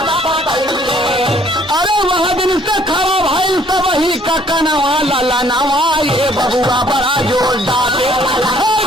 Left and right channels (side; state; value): both; normal; correlation 0.61